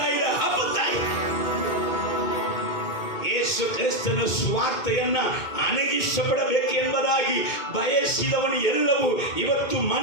ಯೇಸು ಕ್ರಿಸ್ತನ ಸುವಾರ್ತೆಯನ್ನ ಅಣಗಿಸಪಡಬೇಕು ಎಂಬುದಾಗಿ ಬಯಸಿದವನು ಎಲ್ಲವೂ ಇವತ್ತು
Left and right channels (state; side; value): late; right; 2.2 ms